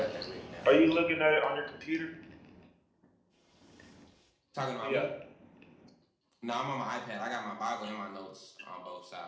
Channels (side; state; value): both; identical; correlation 1.00